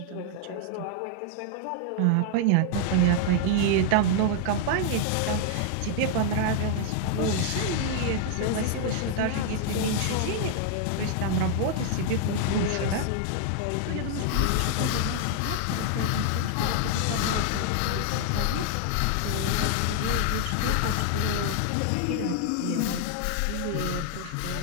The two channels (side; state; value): both; different; correlation 0.00